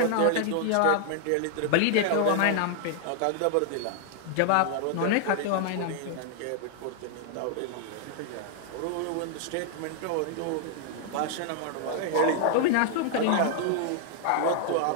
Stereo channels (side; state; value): both; different; correlation 0.00